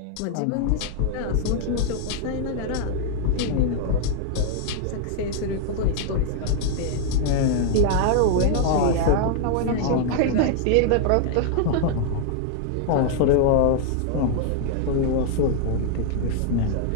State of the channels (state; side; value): different; both; correlation 0.00